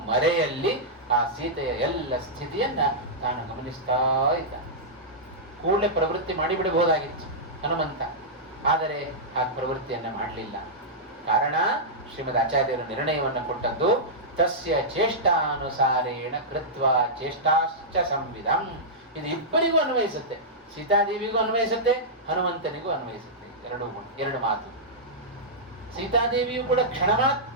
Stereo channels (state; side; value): normal; both; correlation -0.11